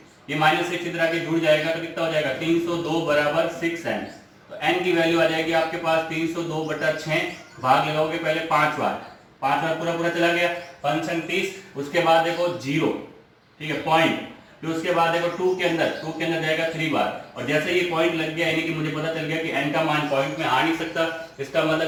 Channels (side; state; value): both; identical; correlation 1.00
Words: ये माइनस 6 इधर आके जुड़ जाएगा तो कितना हो जाएगा? 302 बराबर 6n। तो n की वैल्यू आ जाएगी आपके पास 302 बटा 6, भाग लगाओगे पहले 5 बार, 5 बार पूरा पूरा चला गया, 5 छंग 30। उसके बाद देखो 0, ठीक है, पॉइंट। फिर उसके बाद देखो 2 के अंदर जाएगा 3 बार, और जैसे ये पॉइंट लग गया यानी कि मुझे पता चल गया कि n का मान पॉइंट में आ नहीं सकता। इसका